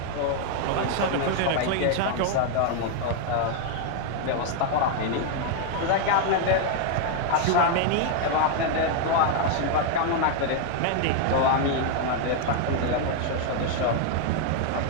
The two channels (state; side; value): different; both; correlation 0.00